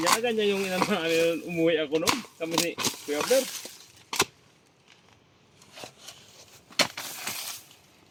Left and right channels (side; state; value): both; identical; correlation 1.00